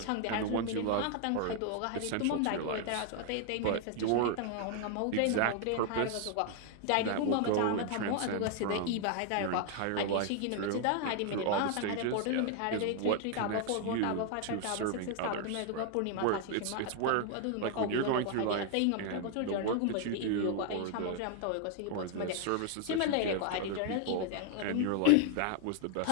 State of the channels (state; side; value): different; both; correlation 0.00